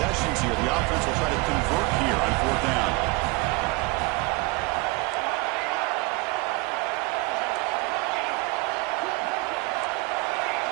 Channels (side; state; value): left; quieter; 25.4 dB